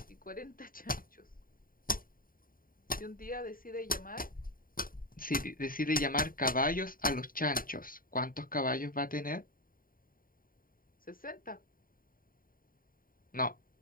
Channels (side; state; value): right; late; 0.41 ms